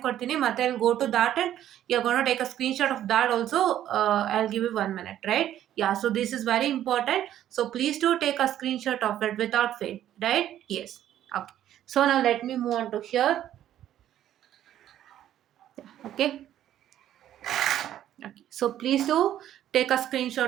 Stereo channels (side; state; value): left; quieter; 11.7 dB